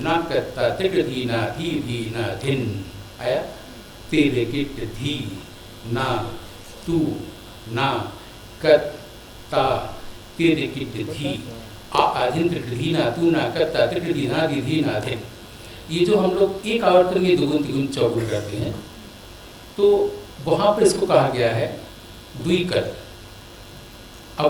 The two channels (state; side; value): identical; both; correlation 1.00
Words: कत्ता त्रिकट धी ना धी ना धिन आया। तेरे किट धी ना तू ना कत्ता तेरे किट धी आदिन त्रिकट धी ना तू ना कत्ता त्रिकट धी ना धिन। ये जो हम लोग एक आवर्तन में दुगुन तिगुन चौगुन करते हैं, तो वहाँ पर इसको कहा गया है द्विकल।